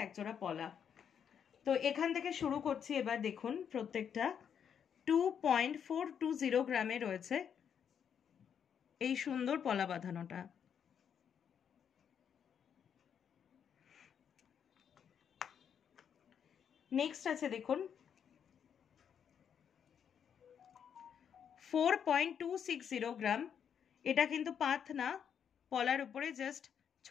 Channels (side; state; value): right; quieter; 8.0 dB